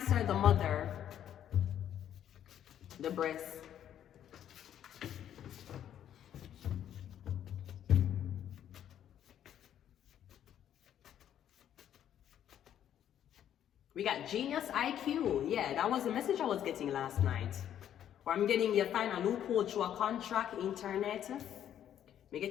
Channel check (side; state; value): right; quieter; 10.3 dB